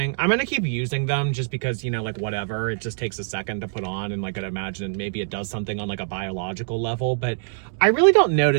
I'm gonna keep using them just because, you know, like, whatever. It just takes a second to put on, and, like, I'd imagine maybe it does something on, like, a biological level, but I really don't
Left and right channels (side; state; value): left; silent; digital silence